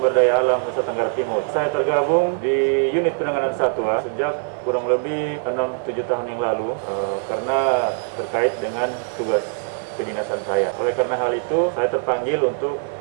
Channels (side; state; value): left; silent; 64 dB below the other